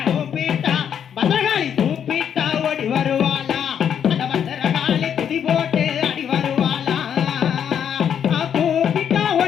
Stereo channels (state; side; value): quieter; right; 8.5 dB